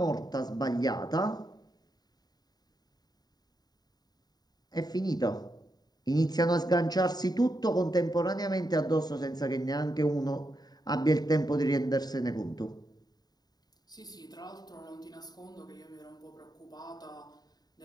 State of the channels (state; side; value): late; right; 0.19 ms